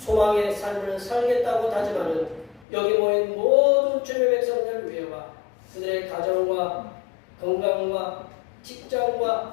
삶을 살겠다고 다짐하는 여기 모인 모든 주님의 백성들 위해와 그들의 가정과 건강과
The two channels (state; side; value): drops out; right; at 2.7 s